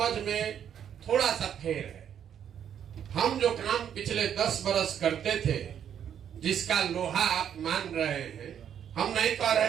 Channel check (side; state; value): left; quieter; 9.0 dB